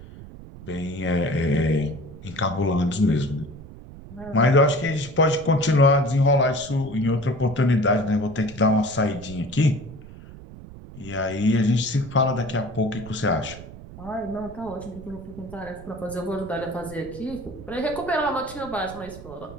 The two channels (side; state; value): right; noise; rumble, 16 dB below the sound